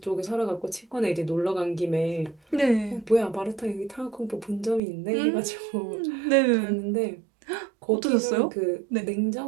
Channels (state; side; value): drops out; left; at 4.8 s